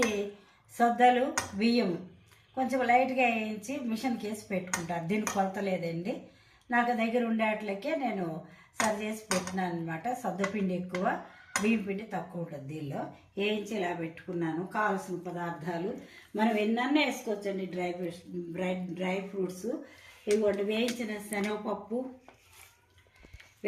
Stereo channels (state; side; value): identical; both; correlation 1.00